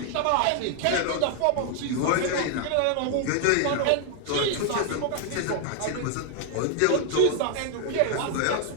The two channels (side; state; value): both; different; correlation 0.00